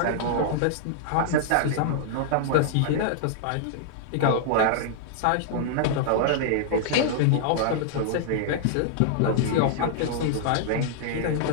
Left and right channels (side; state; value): both; different; correlation -0.01